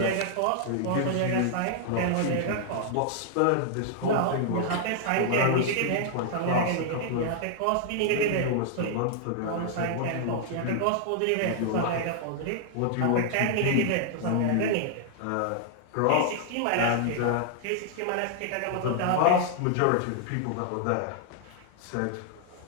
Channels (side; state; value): both; different; correlation 0.00